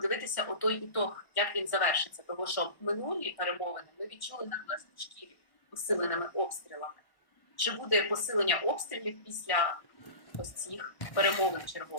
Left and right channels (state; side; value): late; right; 1.1 ms